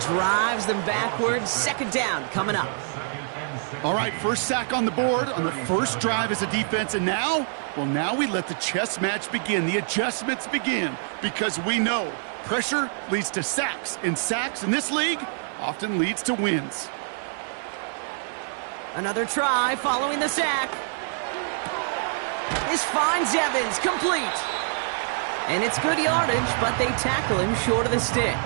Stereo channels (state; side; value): silent; left; 57 dB below the other